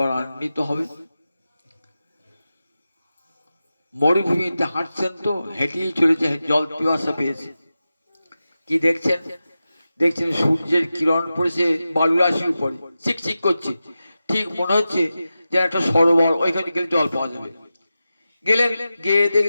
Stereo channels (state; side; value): inverted; both; correlation -0.93